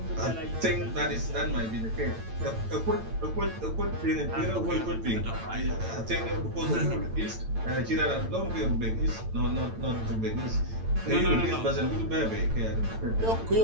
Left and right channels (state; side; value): late; left; 9.0 ms